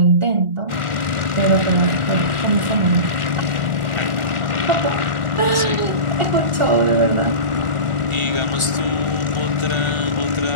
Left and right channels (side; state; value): left; late; 1.4 ms